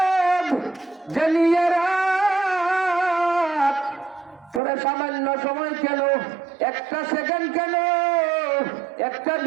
জানিয়ে রাত তোরা সামান্য সময় কেন, একটা সেকেন্ড কেন, একটা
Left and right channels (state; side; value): drops out; left; at 4.6 s